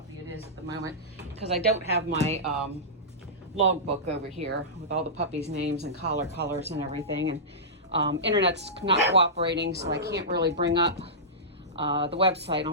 it is at the moment because I don't have my logbook over here with all the puppies' names and collar colors and everything. And internet's not cooperating, so I can't really bring up the website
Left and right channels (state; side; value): normal; both; correlation -0.16